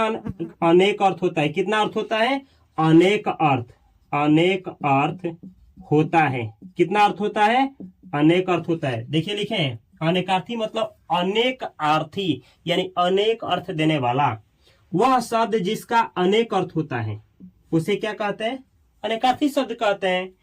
अनेक अर्थ होता है? कितना अर्थ होता है? अनेक अर्थ, अनेक अर्थ होता है। कितना अर्थ होता है? अनेक अर्थ होता है। देखिए लिखे हैं, अनेकार्थी मतलब अनेक अर्थी, यानी अनेक अर्थ देने वाला। वह शब्द जिसका अनेक अर्थ होता है उसे क्या कहते हैं? अनेकार्थी शब्द कहते हैं।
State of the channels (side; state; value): both; identical; correlation 1.00